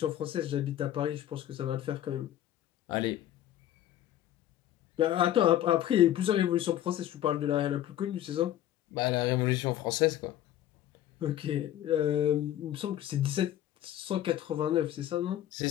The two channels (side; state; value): right; quieter; 12.2 dB